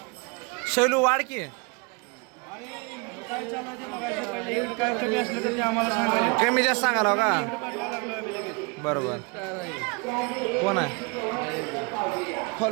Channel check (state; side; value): quieter; left; 31.1 dB